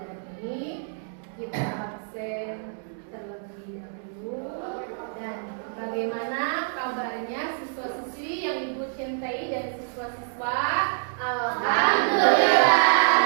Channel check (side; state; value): left; silent; digital silence